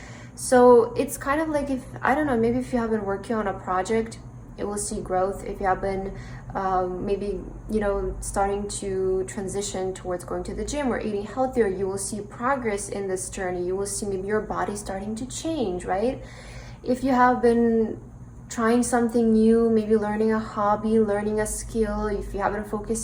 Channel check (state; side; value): identical; both; correlation 1.00